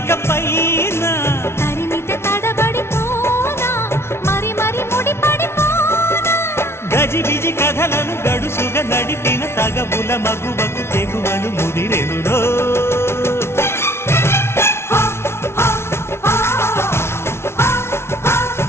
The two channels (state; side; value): late; right; 0.12 ms